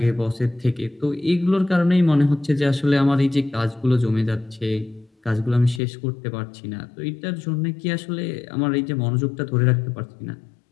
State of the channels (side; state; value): right; drops out; at 5.8 s